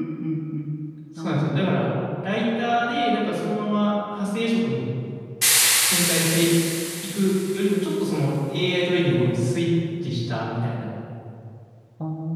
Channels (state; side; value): identical; both; correlation 1.00